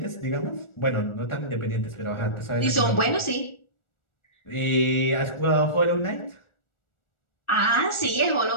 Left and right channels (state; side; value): late; right; 1.4 ms